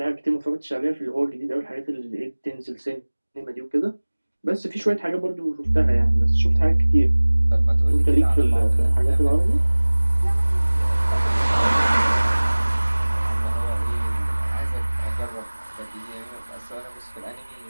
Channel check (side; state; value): both; inverted; correlation -1.00